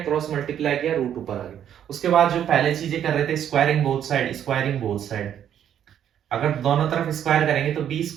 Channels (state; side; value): quieter; left; 9.8 dB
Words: मल्टीप्लाई किया, रूट ऊपर आ गया। उसके बाद जो पहले चीजें कर रहे थे, squaring both side, squaring both side, अगर दोनों तरफ स्क्वायर करेंगे तो B